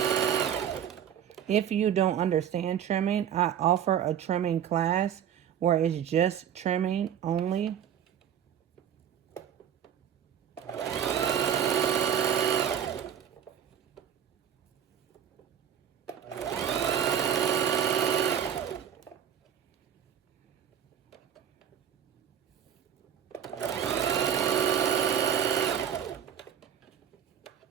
If you don't understand trimming, I offer a trimming class where it's just trimming only.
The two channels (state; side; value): quieter; left; 9.1 dB